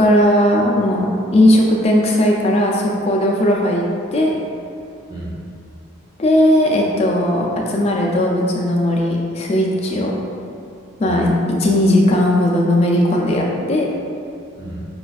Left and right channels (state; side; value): normal; both; correlation 0.64